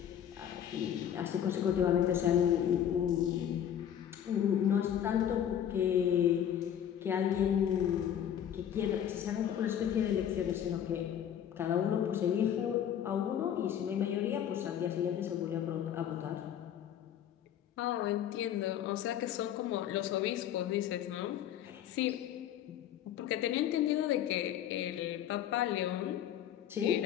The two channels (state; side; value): quieter; right; 9.9 dB